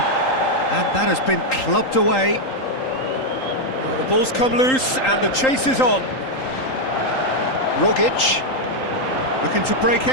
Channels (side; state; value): right; late; 3.8 ms